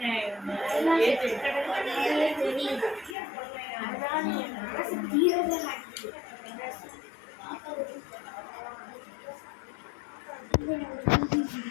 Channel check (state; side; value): drops out; right; at 3.2 s